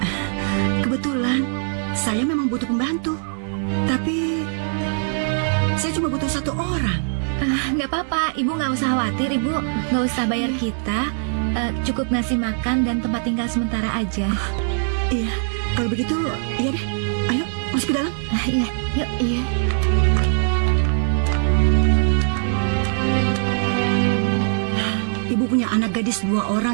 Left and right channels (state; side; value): silent; left; 65 dB below the other